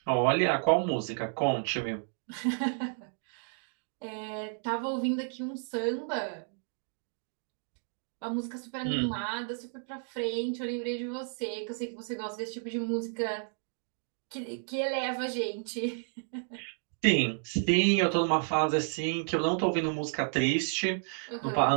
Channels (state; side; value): silent; left; 57 dB below the other